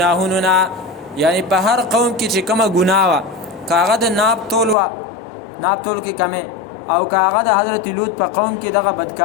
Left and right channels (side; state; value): right; drops out; at 4.8 s